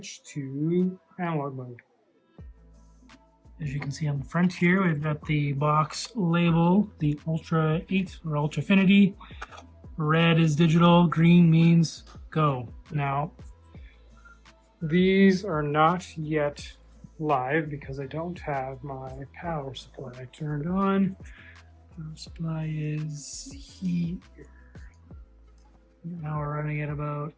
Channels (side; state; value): both; identical; correlation 1.00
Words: to analog mode. As you can see on the front here, we've got the box label, the ULTRA-8 or ULTRAfinity. Red is digital, green means go. Now, these are not yet live because I don't have my power supply turned on. Power supply is here. Now we're running at about